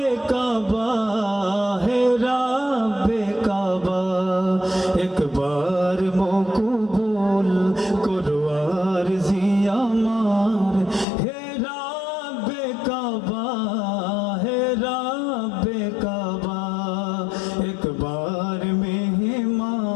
কাবা, হে রাব্বে কাবা, একবার মকবুল করো আরজি আমার। হে রাব্বে কাবা, হে রাব্বে কাবা, একবার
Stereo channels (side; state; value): right; drops out; at 11.1 s